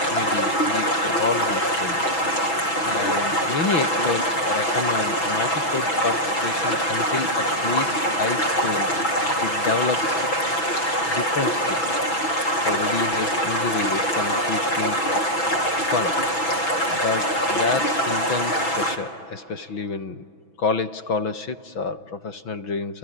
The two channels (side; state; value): right; late; 6.1 ms